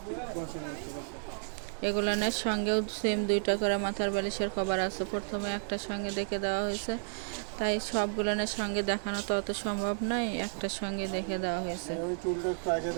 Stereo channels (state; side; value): silent; left; 56 dB below the other